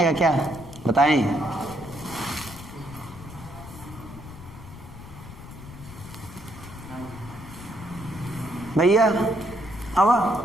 क्या, बताएं। भैया आवा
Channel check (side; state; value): left; noise; rumble, 15 dB below the sound